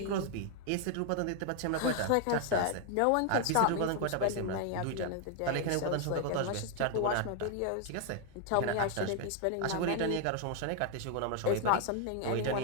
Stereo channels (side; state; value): both; different; correlation 0.00